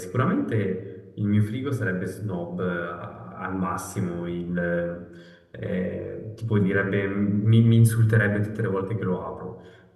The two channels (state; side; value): identical; both; correlation 1.00